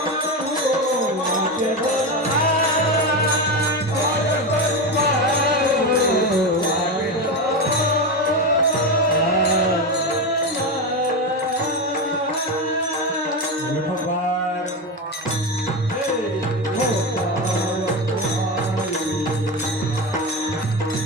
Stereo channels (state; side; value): normal; both; correlation 0.16